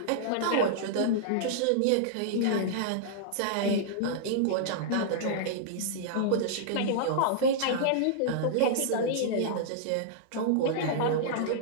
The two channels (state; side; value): different; both; correlation -0.02